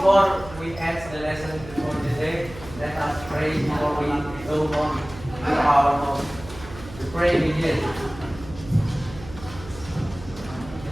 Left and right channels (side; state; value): right; noise; hum, 15 dB below the sound